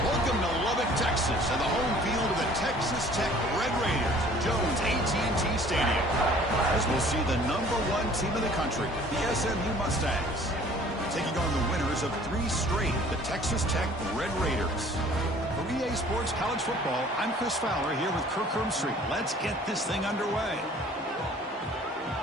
Welcome to Lubbock, Texas, and the home field of the Texas Tech Red Raiders, Jones AT&T Stadium. As we'll see the #1 team in the country, the SMU Mustangs, taking on the winners of 3 straight, the Texas Tech Red Raiders. For EA Sports College Football, I'm Chris Fowler here with Kirk Herbstreit. Let's get this thing underway.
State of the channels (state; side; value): normal; both; correlation 0.52